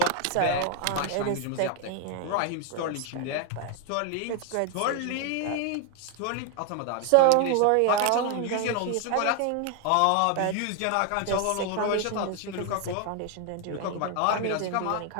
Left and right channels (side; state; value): both; different; correlation 0.01